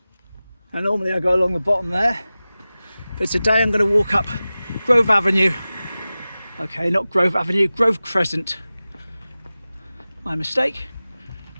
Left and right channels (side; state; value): both; inverted; correlation -0.96